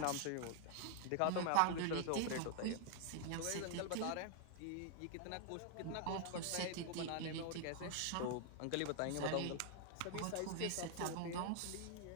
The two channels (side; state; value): both; different; correlation 0.00